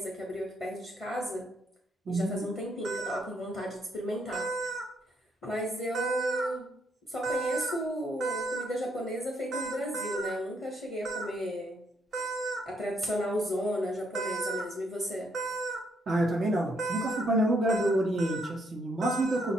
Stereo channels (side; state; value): both; normal; correlation 0.73